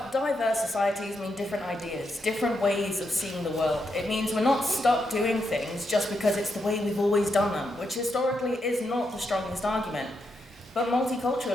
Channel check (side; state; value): both; normal; correlation 0.82